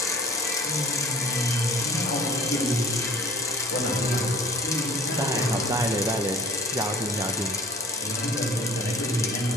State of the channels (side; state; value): both; normal; correlation 0.44